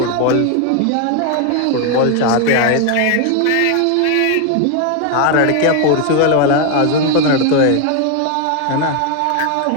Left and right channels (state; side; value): different; both; correlation 0.01